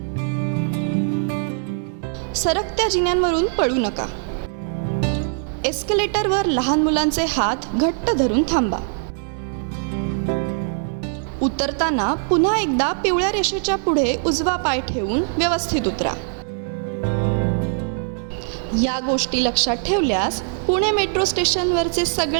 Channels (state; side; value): silent; left; 64 dB below the other